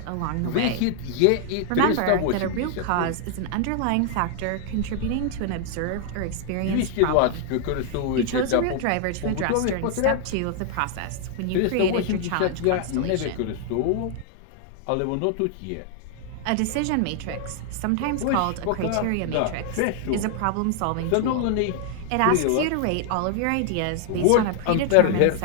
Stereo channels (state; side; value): different; both; correlation 0.00